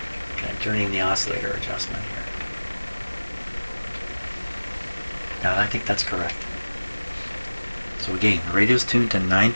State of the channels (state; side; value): inverted; both; correlation -1.00